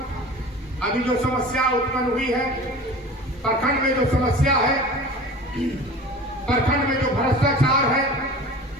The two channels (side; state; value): both; normal; correlation 0.38